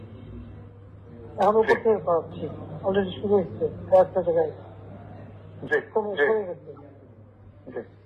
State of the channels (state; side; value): identical; both; correlation 1.00